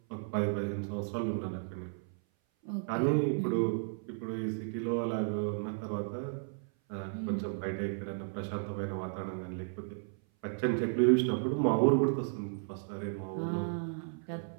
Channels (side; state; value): left; silent; 55 dB below the other